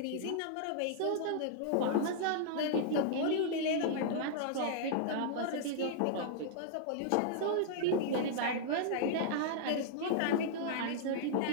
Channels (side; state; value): both; different; correlation -0.02